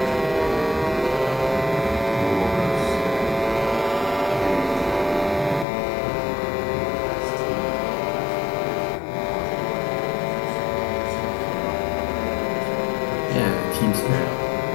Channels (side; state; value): right; drops out; at 5.7 s